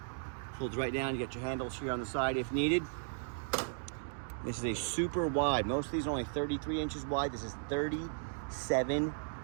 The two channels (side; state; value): left; silent; digital silence